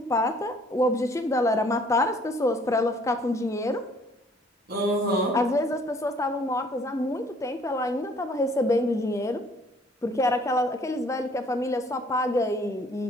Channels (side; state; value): both; normal; correlation 0.59